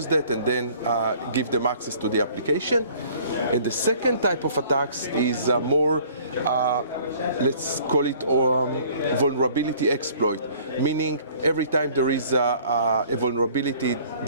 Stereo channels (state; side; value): inverted; both; correlation -0.54